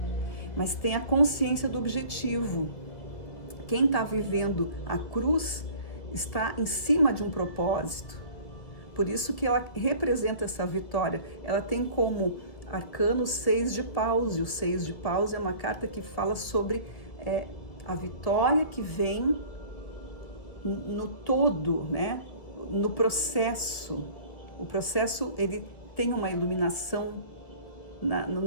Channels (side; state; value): right; late; 1.7 ms